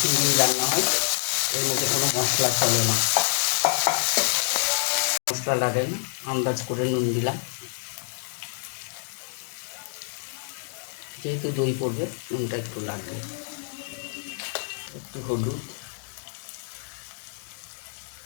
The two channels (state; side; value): silent; right; digital silence